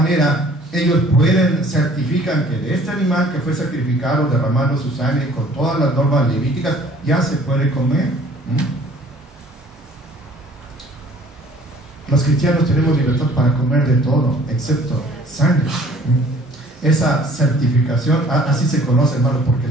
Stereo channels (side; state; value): both; normal; correlation 0.54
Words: ellos certifican que de este animal que fue sacrificado derramando su sangre con todas las normas levíticas ya se puede comer. Los cristianos tenemos libertad para comer de todo, excepto sangre. Esa certificación, así se conoce, hermano, porque